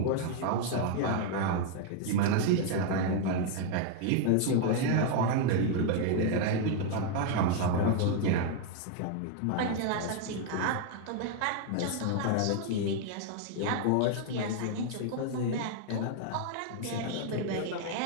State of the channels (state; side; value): different; both; correlation 0.00